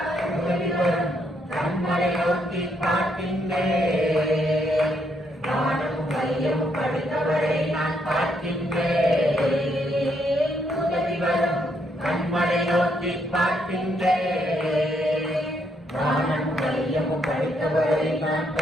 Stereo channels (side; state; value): both; normal; correlation 0.74